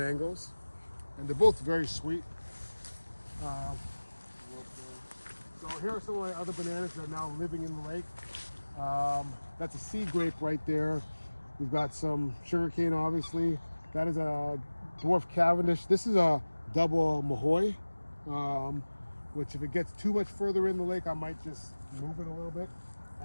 and they're both very sweet. So here are some of my other bananas that are now living in the lake. That's a sea grape right there. We've got some sugarcane, obviously. That is a dwarf Cavendish. This is a double Mahoy, which if it gets too much further in the lake, I might just move it a little bit. I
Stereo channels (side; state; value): both; inverted; correlation -1.00